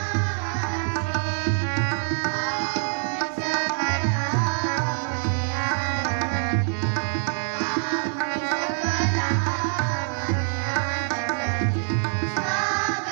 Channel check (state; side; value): silent; left; 62 dB below the other